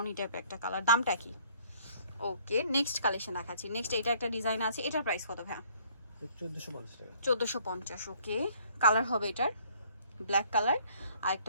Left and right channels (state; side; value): inverted; both; correlation -0.60